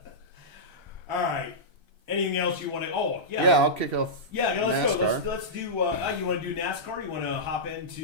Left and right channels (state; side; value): late; left; 1.3 ms